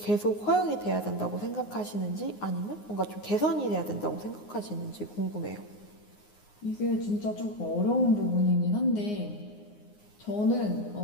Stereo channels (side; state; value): right; late; 9.6 ms